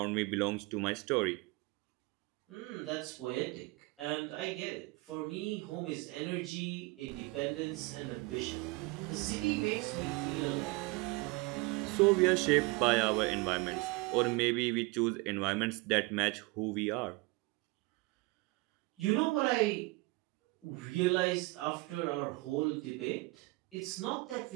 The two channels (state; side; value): quieter; left; 24.3 dB